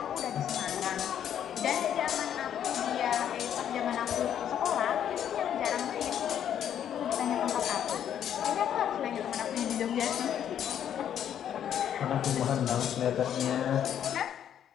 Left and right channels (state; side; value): quieter; right; 9.7 dB